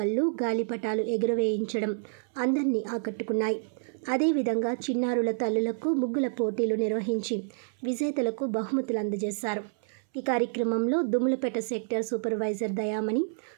గాలిపటాలు ఎగురవేయించడం అందరినీ ఆకట్టుకున్నాయి. అదేవిధంగా చిన్నారుల తల్లులకు ముగ్గుల పోటీలు నిర్వహించి విజేతలకు బహుమతులు అందజేశారు. ఈ కార్యక్రమంలో దుమ్మలపేట సెక్టర్ సూపర్వైజర్ దయామణి,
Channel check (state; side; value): silent; left; 59 dB below the other